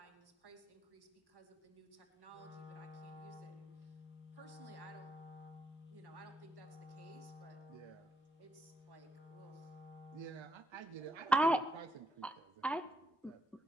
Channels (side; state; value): both; normal; correlation 0.78